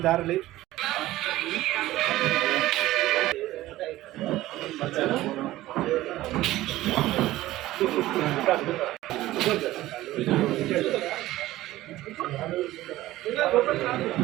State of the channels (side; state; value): left; quieter; 16.2 dB